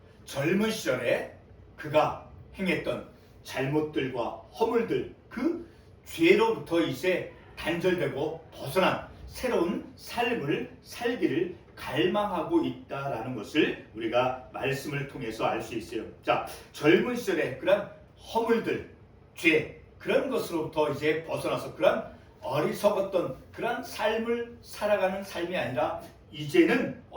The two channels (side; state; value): both; identical; correlation 1.00